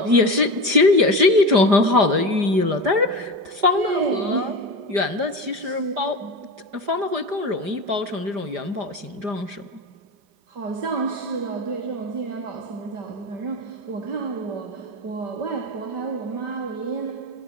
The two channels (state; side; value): late; left; 5.0 ms